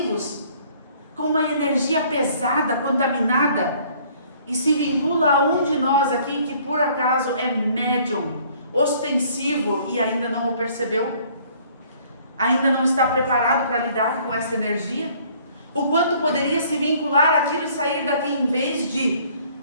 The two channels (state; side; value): inverted; both; correlation -0.58